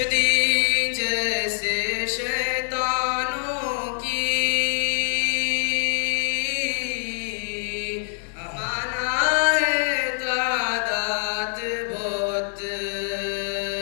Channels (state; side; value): silent; right; digital silence